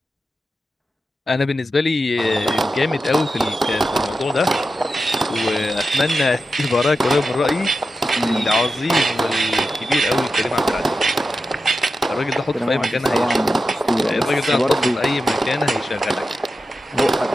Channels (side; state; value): both; normal; correlation 0.91